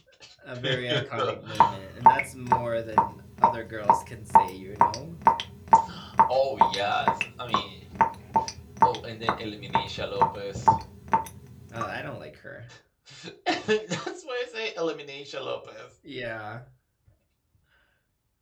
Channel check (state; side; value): identical; both; correlation 1.00